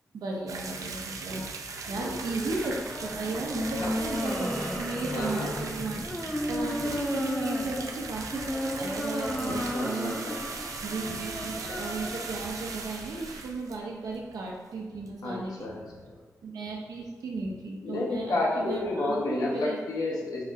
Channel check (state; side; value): normal; both; correlation 0.76